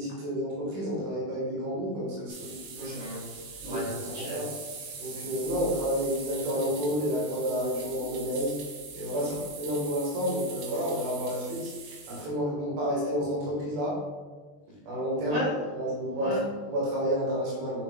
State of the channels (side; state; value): left; late; 20 ms